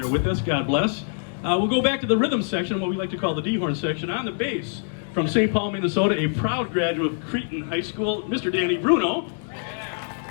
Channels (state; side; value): silent; right; digital silence